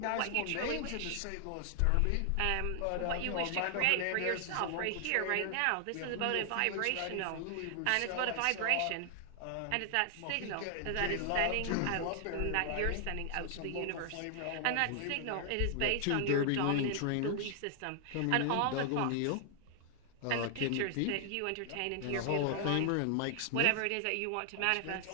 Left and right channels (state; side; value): different; both; correlation 0.00